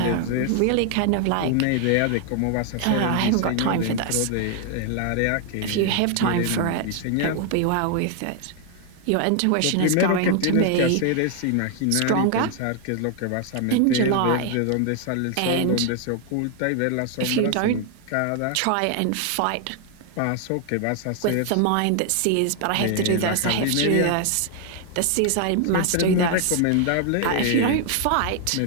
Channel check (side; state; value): both; different; correlation 0.00